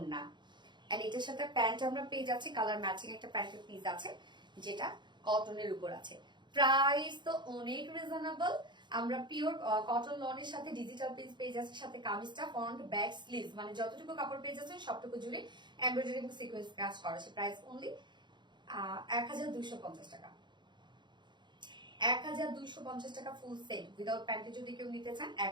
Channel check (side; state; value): left; late; 0.22 ms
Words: এন্ড এটার সাথে প্যান্ট আমরা পেয়ে যাচ্ছি কালার ম্যাচিং একটা প্যান্টের পিস আছে, যেটা কটনের উপর আছে। প্রাইস তো অনেক রিজনেবল। আমরা পিওর কটন লনের সাথে ডিজিটাল পিস পেয়ে যাচ্ছি, সাথে কামিজটা ফ্রন্ট ব্যাক স্লিভস, মানে যতটুকু কাপড় পেয়ে যাচ্ছেন সবটুকু জুড়ে এমব্রয়ডারি এবং সিকোয়েন্স কাজ করা আছে। প্রাইস অনলি 1250 টাকা। 1250 টাকা ফুল সেট উইদাউট প্যান্টে যদি কেউ নিতে চান